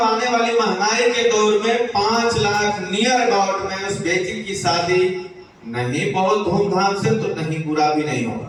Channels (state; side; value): identical; both; correlation 1.00